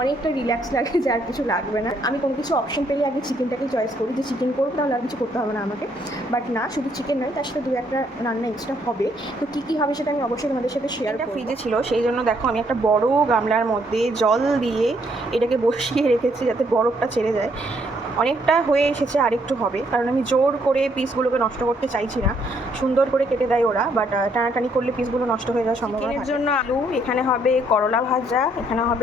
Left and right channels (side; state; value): both; normal; correlation 0.70